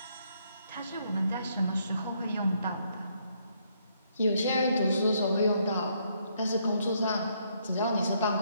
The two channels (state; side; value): inverted; both; correlation -0.72